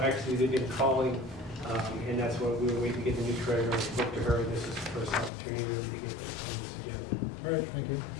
actually, they've been calling, and that's why we were waiting to get the new treasurer. I spoke to her, and this is the first opportunity really to get this on this agenda. All right, thank you.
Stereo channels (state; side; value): drops out; right; at 5.3 s